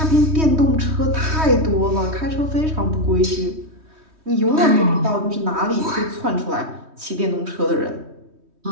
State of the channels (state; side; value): late; left; 3.2 ms